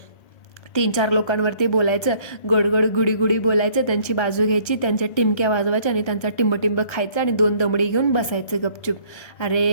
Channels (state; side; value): late; right; 1.3 ms